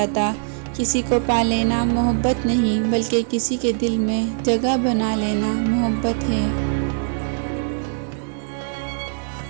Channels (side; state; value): left; silent; digital silence